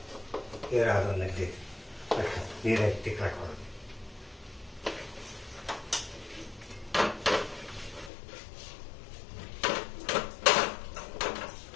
ನೀರು ಎತ್ತಿ ಕಟ್ಕೊಂಡು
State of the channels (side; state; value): right; drops out; at 8.1 s